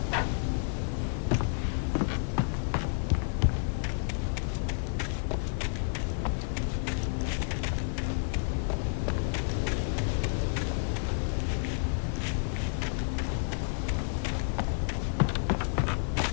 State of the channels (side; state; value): right; silent; 58 dB below the other